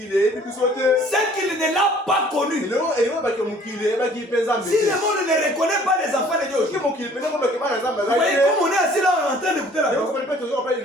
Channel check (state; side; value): normal; both; correlation 0.54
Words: ne l'a pas connu. Si le monde ne reconnaît pas les enfants de Dieu, vous voyez comme on est assis là en train d'écouter la